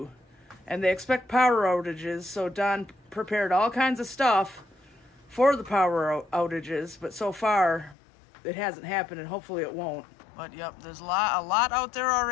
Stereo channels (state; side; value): drops out; right; at 8.0 s